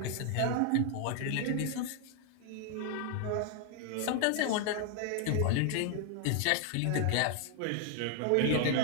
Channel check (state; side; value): different; both; correlation 0.00